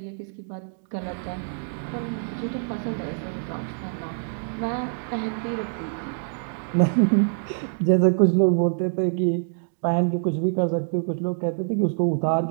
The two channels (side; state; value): left; silent; digital silence